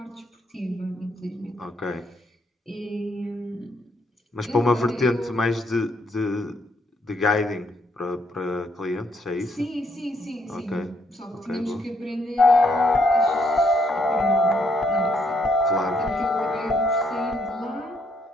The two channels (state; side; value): normal; both; correlation 0.72